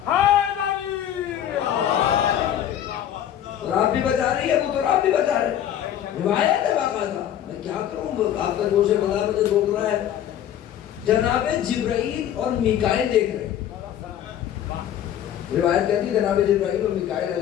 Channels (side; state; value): right; quieter; 10.6 dB